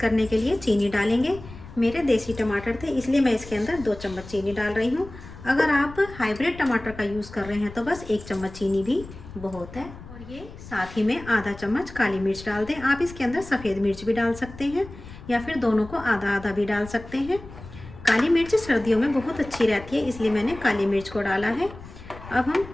के लिए चीनी डालेंगे। मेरे देसी टमाटर थे इसलिए मैं इसके अंदर 2 चम्मच चीनी डाल रही हूँ। अगर आप हाइब्रिड टमाटर का यूज़ कर रहे हैं तो बस 1 चम्मच चीनी भी बहुत है। और ये साथ ही में आधा चम्मच काली मिर्च डाल दें। आप इसके अंदर सफ़ेद मिर्च भी डाल सकते हैं या फिर दोनों को आधा आधा भी डाल सकते हैं। काली मिर्च सर्दियों में बहुत अच्छी रहती है, इसलिए मैंने काली मिर्च को डाला है। अब हम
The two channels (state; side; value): noise; left; rumble, 16 dB below the sound